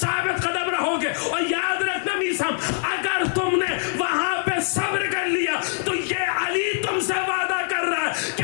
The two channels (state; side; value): silent; right; digital silence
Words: قدم رہو گے۔ اور یاد رکھنا میسم، اگر تم نے وہاں پہ صبر کر لیا تو یہ علی تم سے وعدہ کر رہا ہے کہ